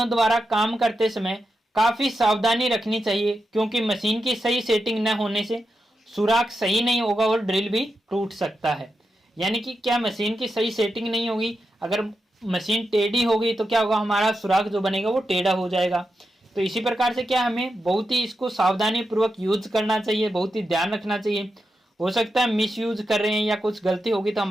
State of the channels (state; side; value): normal; both; correlation 0.88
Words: द्वारा काम करते समय काफी सावधानी रखनी चाहिए, क्योंकि मशीन की सही सेटिंग न होने से सुराख सही नहीं होगा और ड्रिल भी टूट सकता है। यानी कि क्या, मशीन की सही सेटिंग नहीं होगी, अगर मशीन टेढ़ी होगी तो क्या होगा, हमारा सुराख जो बनेगा वो टेढ़ा हो जाएगा। तो इसी प्रकार से क्या, हमें बहुत ही इसको सावधानी पूर्वक यूज करना चाहिए, बहुत ही ध्यान रखना चाहिए। हो सकता है मिस यूज कर रहे हैं या कुछ गलती होगी तो